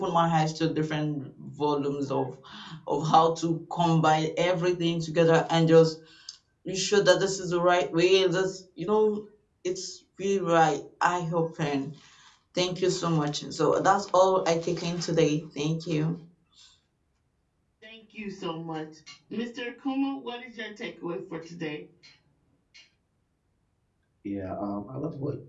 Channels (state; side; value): identical; both; correlation 1.00